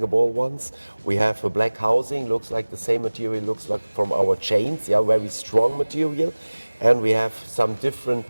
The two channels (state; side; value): inverted; both; correlation -1.00